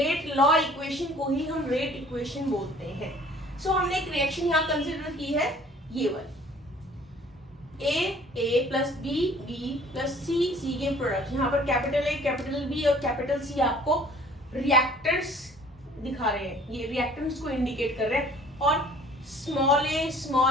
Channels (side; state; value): both; normal; correlation 0.53